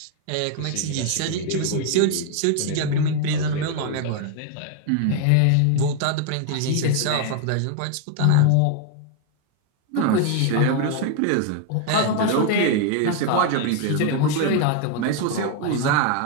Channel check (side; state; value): both; different; correlation 0.01